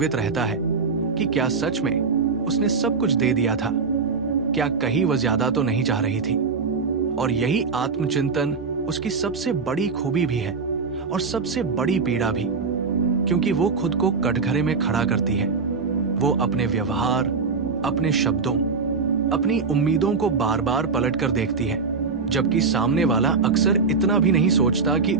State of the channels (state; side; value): quieter; left; 4.8 dB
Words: रहता है कि क्या सच में उसने सब कुछ दे दिया था? क्या कहीं वह ज्यादा तो नहीं चाह रही थी? और यही आत्मचिंतन उसकी सबसे बड़ी खूबी भी है और सबसे बड़ी पीड़ा भी, क्योंकि वो खुद को कटघरे में खड़ा करती है। वो अपने व्यवहार, अपने शब्दों, अपनी उम्मीदों को बार बार पलट कर देखती है, जबकि सामने वाला अक्सर इतना भी नहीं सोचता कि